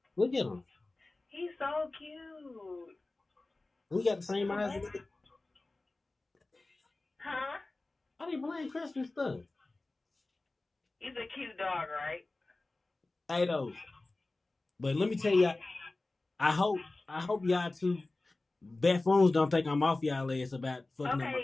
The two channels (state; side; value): quieter; right; 3.1 dB